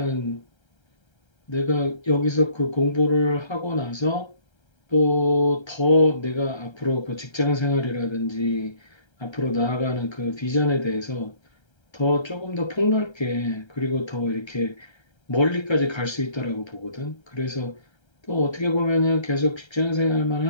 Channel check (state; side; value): late; right; 1.3 ms